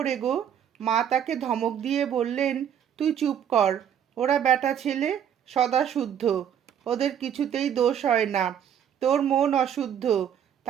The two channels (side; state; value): left; quieter; 9.0 dB